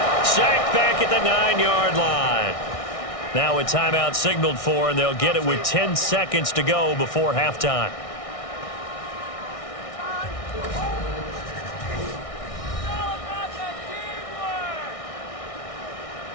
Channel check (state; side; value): late; right; 1.6 ms